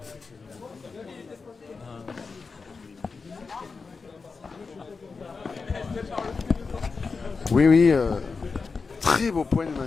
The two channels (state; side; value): quieter; right; 4.6 dB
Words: Oui, oui. Très beau point de